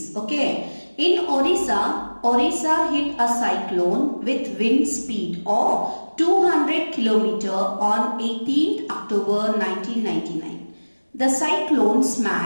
okay. In Orissa hit a cyclone with wind speed of 200 km on 18th October 1999. The cyclone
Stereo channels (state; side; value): inverted; both; correlation -1.00